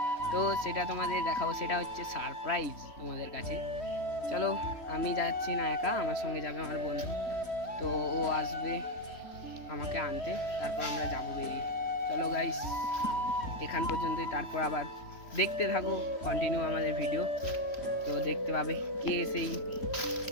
তো সেটা তোমাদের দেখাবো। সেটা হচ্ছে সারপ্রাইজ তোমাদের কাছে। চলো, আমি যাচ্ছি না একা, আমার সঙ্গে যাবে আমার বন্ধু। তো ও আসবে আমাকে আনতে, তারপর আমরা যাবো বেরিয়ে। চলো গাইস, এখান পর্যন্তই, তারপর আবার দেখতে থাকো কন্টিনিউ আমাদের ভিডিও। তো দেখতে পাবে কে সেই,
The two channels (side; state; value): right; late; 3.1 ms